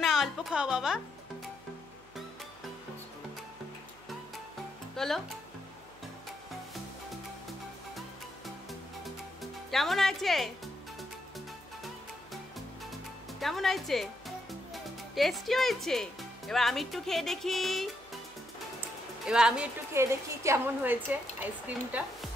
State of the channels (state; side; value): noise; right; hum, 27 dB below the sound